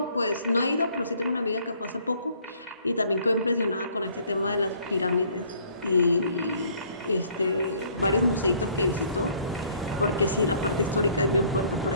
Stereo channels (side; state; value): both; inverted; correlation -0.59